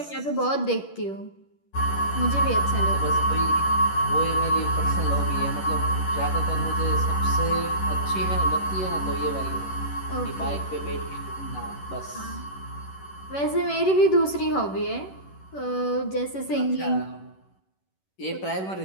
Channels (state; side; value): late; right; 11 ms